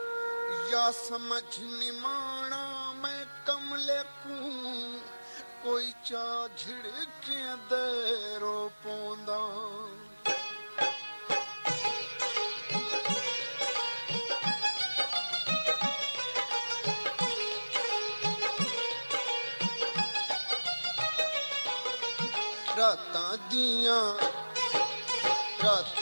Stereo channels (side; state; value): both; inverted; correlation -1.00